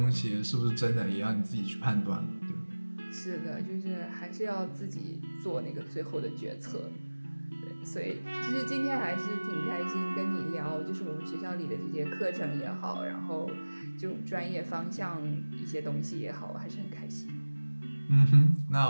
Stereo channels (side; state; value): both; inverted; correlation -1.00